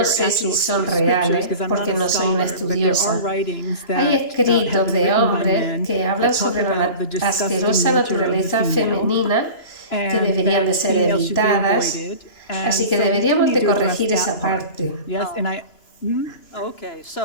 sé si son reales, porque no soy una estudiosa. Hay escritos de hombres que hablan sobre la asquerosa naturaleza femenina que deberían de ser evitadas, así que deberíamos de corregir esa parte.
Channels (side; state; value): right; late; 2.9 ms